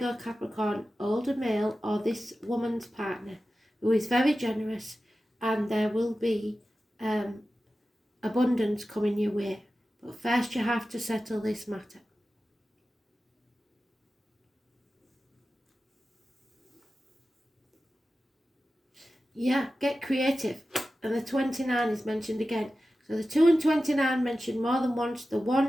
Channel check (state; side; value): normal; both; correlation 0.94